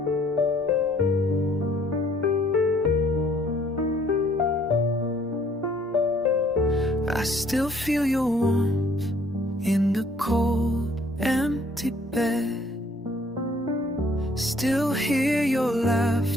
I still feel your warmth in the cold, empty bed. Still hear your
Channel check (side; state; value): both; normal; correlation 0.61